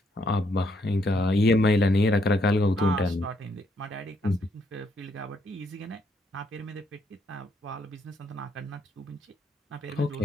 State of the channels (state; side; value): normal; both; correlation 0.73